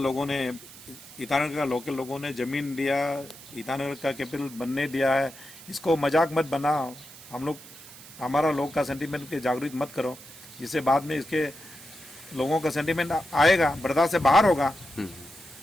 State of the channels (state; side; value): noise; right; hiss, 18 dB below the sound